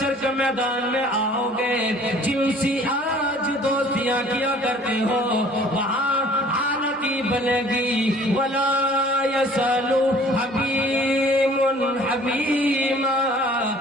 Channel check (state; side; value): normal; both; correlation 0.52